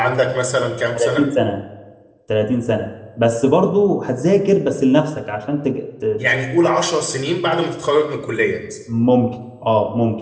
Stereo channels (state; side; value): identical; both; correlation 1.00